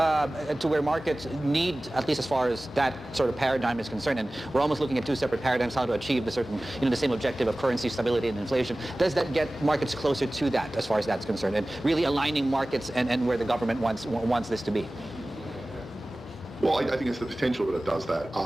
where markets need, at least as far as that sort of paradigm is concerned, and we're almost looking at 2 separate paradigms, how to achieve the certain, the same objective of currency stability and inflation. Does that get markets closer to that as far as that's concerned, and really aligning markets and where the government wants this to be? Well, I think it's the potential that it does that.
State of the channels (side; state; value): both; normal; correlation 0.98